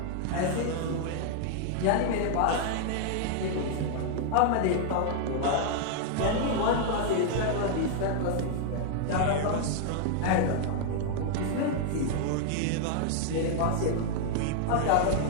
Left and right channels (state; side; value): different; both; correlation 0.00